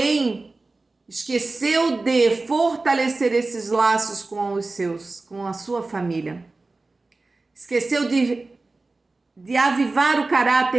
esqueceu de fortalecer esses laços com os seus, com a sua família. Esqueceu de avivar o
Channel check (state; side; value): quieter; left; 3.4 dB